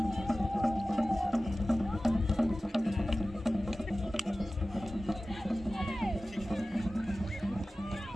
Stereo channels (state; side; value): normal; both; correlation 0.96